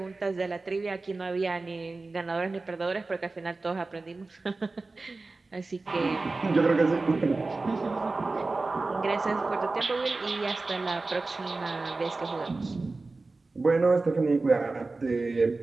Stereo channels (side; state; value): left; quieter; 3.5 dB